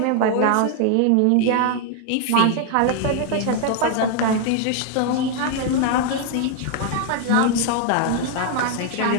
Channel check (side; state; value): both; different; correlation 0.00